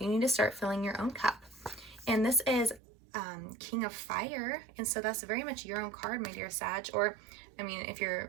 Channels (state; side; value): drops out; left; at 2.8 s